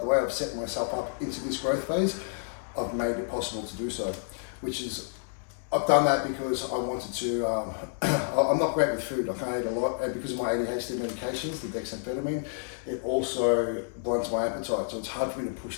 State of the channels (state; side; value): silent; right; digital silence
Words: way I've set myself up into this growth phase, I've made it possible to do so, which is, I've done that because I wanted to, I'm not great with food, I can't eat a lot, and because of my ADHD medications, the dexamphetamine, it also blunts my appetite, so it's hard for me to push